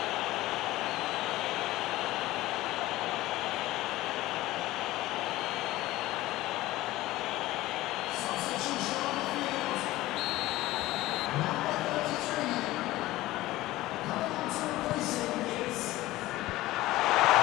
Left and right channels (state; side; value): quieter; right; 17.2 dB